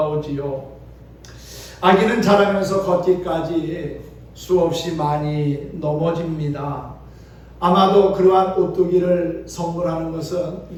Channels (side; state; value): both; identical; correlation 1.00